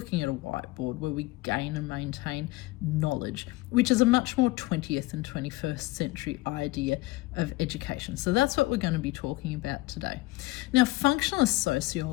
at a whiteboard where we gain and maintain knowledge, which is a much more 20th and 21st century idea of education. So that's what we're going to be talking about today. Now, functionalist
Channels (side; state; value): right; quieter; 20.2 dB